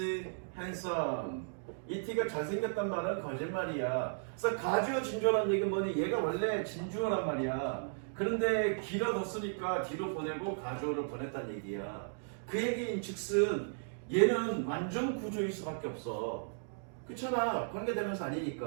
handsome. 이티가 잘생겼단 말은 거짓말이야. 그래서 가주어 진주어라는 얘기는 뭐니? 얘가 원래 진주어란 말이야. 그런데 길어졌으니까 뒤로 보내고 가주어를 보냈다는 얘기야. 그 얘기인 즉슨 얘는 완전 구조일 수밖에 없어. 그렇잖아. 관계대명사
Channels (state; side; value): silent; left; digital silence